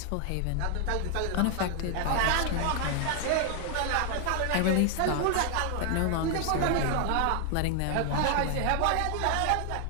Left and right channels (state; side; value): different; both; correlation 0.00